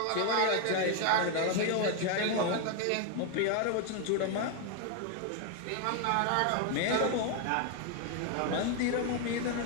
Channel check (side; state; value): both; different; correlation 0.00